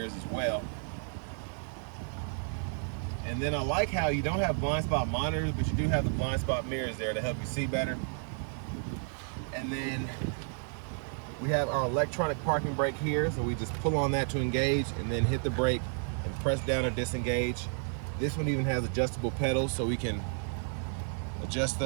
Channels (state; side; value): silent; left; 57 dB below the other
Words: as well. And then I like how you don't have blind spot monitors, but you do have the blind spot mirrors there to help you see better. And then we have our electronic parking brake here, so we just pull on that to engage and then hit the brake and press down or disengage. This one even has adjustable pedals, so we can adjust